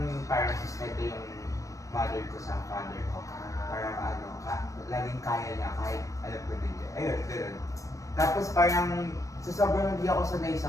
parang sustento yung mother ko sa father ko. Parang laging kaya niya kahit alam ko na hindi. Ayun, gano'n. Tapos parang sa sobrang hindi ako sanay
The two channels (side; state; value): right; late; 0.16 ms